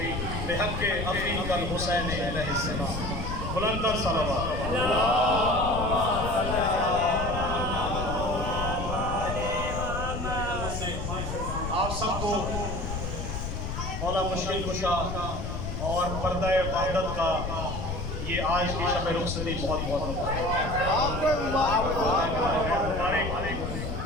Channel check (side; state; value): left; noise; rumble, 4 dB below the sound